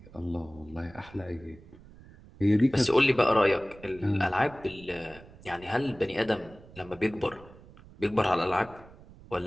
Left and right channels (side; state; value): right; noise; rumble, 21 dB below the sound